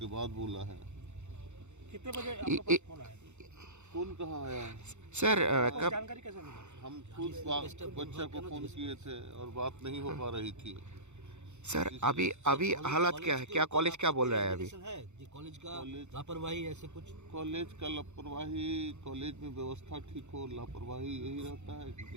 बाद बोला है। कितने बजे आपके पास फोन आया? फोन कहाँ आया सर? कब जानकारी कैसे मिली? हम खुद बच्चा को फ़ोन किए थे और बात नहीं हो पा रही थी। सर अभी हालत क्या है? क्या कॉलेज क्या बोल रहा है अभी? कॉलेज का लापरवाही ऐसे कुछ? कॉलेज का लापरवाही, कॉलेज में व्यवस्था ठीक हो, लापरवाही यही रहता है कि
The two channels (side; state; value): left; late; 0.83 ms